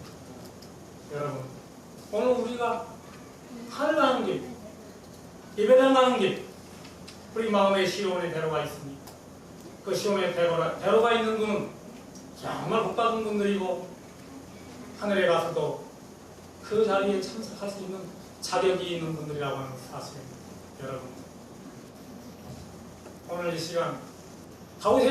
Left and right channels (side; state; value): both; identical; correlation 1.00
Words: 여러분 오늘 우리가 하늘 가는 길, 예배당 가는 길, 우리 마음에 시온의 대로가 있습니다. 그 시온의 대로가 있는 분은 정말 복받은 분들이고 하늘에 가서도 그 자리에 참석할 수 있는 자격이 있는 분들이라고 하는 사실입니다. 여러분 오늘 이 시간